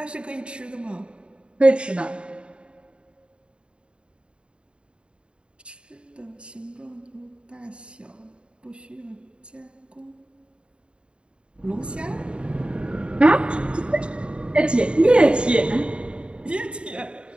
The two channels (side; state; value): left; late; 0.054 ms